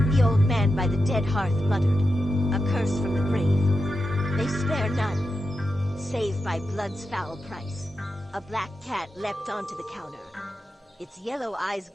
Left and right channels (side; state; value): both; normal; correlation 0.88